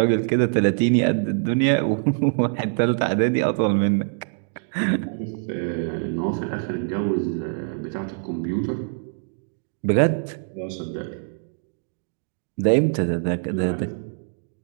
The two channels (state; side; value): silent; left; digital silence